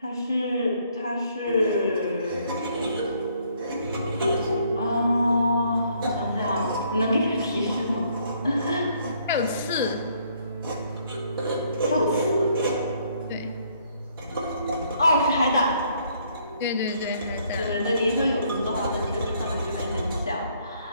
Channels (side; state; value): both; inverted; correlation -0.67